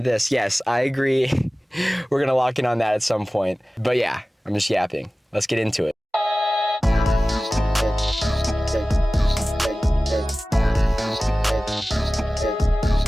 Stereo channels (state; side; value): normal; both; correlation 0.97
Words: this. Yes, I agree. We're going to lock in on that at some point. But yeah, I'm just yapping. Let's get into it.